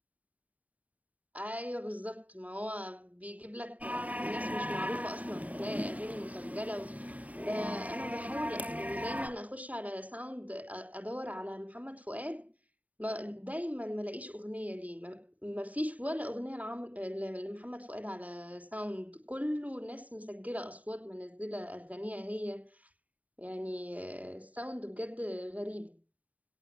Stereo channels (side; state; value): left; late; 0.072 ms